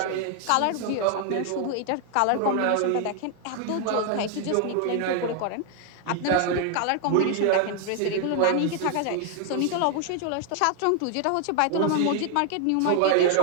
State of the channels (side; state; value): both; different; correlation 0.00